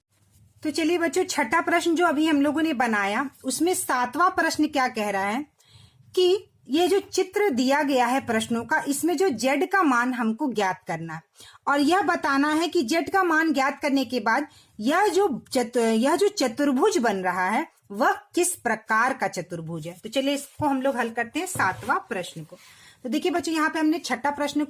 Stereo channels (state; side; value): identical; both; correlation 1.00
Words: तो चलिए बच्चों, छठा प्रश्न जो अभी हम लोगों ने बनाया उसमें 7वां प्रश्न क्या कह रहा है कि ये जो चित्र दिया गया है प्रश्नों का, इसमें जो z का मान हमको ज्ञात करना है और यह बताना है कि z का मान ज्ञात करने के बाद यह जो चतुर्भुज बन रहा है वह किस प्रकार का चतुर्भुज है। तो चलिए इसको हम लोग हल करते हैं 7वां प्रश्न को। तो देखिए बच्चों, यहाँ पे हमने छठा प्रश्न